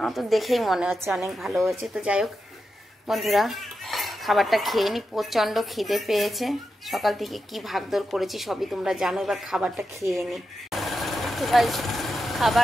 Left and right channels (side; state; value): both; normal; correlation 0.88